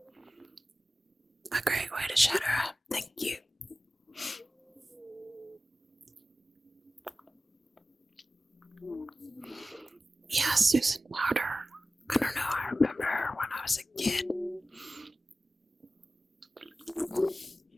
A great way to shut her up, thank you. Yeah, Susan Powder. I don't know, I remember her when I was a kid.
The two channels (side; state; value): both; normal; correlation 0.95